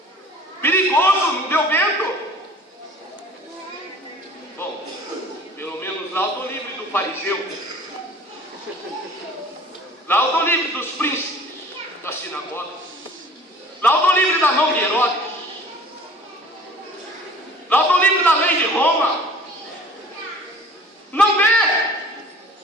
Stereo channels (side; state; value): both; normal; correlation 0.48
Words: Perigoso, não deu vento. Bom, pelo menos lá eu estou livre do fariseu. Lá eu estou livre dos príncipes da sinagoga. Lá eu estou livre da mão de Herodes. Lá eu estou livre da lei de Roma. Não vê